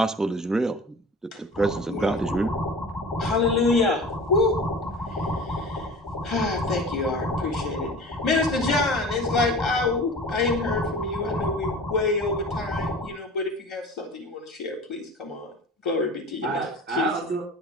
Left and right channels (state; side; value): normal; both; correlation 0.38